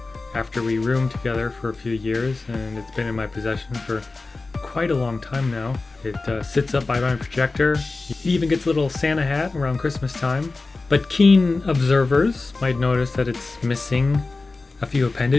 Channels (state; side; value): quieter; right; 3.6 dB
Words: after we roomed together for a few years, and it's been in my possession for quite a long time now. It sits up by my projector. It even gets a little Santa hat around Christmas time. But keen observers might notice that it's missing a few